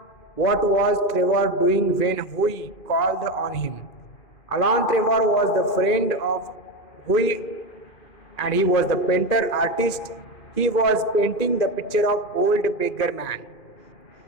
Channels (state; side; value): late; right; 2.4 ms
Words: What was Trevor doing when Hui called on him? Alan Trevor was the friend of Hui and he was the painter artist. He was painting the picture of old beggar man.